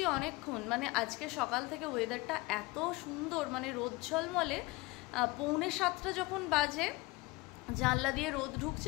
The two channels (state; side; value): quieter; right; 22.9 dB